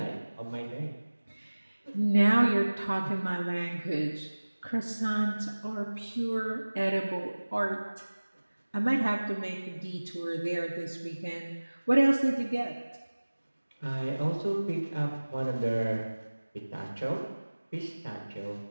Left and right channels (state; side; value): inverted; both; correlation -1.00